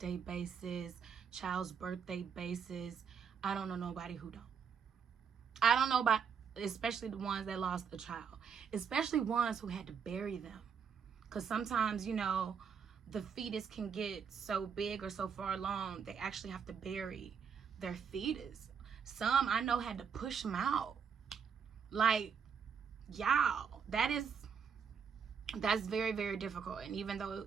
basis, child's birthday basis. I don't know nobody who don't. I don't know about, especially the ones that lost a child, especially ones who had to bury them. Because sometimes, you know, the fetus can get so big or so far along, they actually have to bury their fetus. Some I know had to push them out. Like, y'all, that's very, very difficult. And even though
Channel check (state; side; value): quieter; left; 6.7 dB